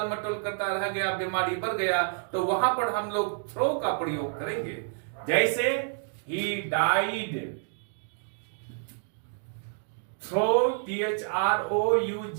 मटोल करता रह गया, बीमारी बढ़ गया, तो वहां पर हम लोग थ्रो का प्रयोग करेंगे। जैसे ही died through,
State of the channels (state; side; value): silent; left; digital silence